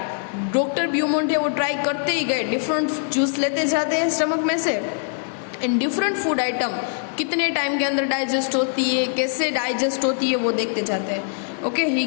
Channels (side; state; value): right; silent; digital silence